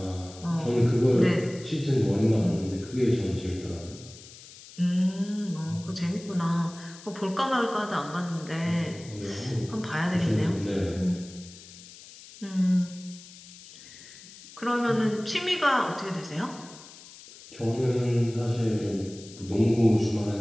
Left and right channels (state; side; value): noise; left; hiss, 18 dB below the sound